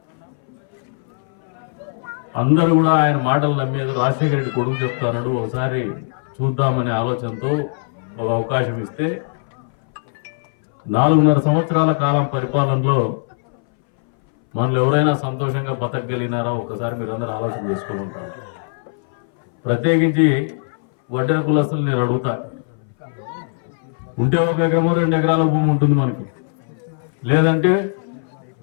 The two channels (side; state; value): right; silent; 62 dB below the other